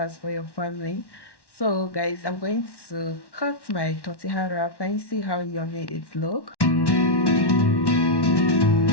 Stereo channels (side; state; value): right; late; 1.1 ms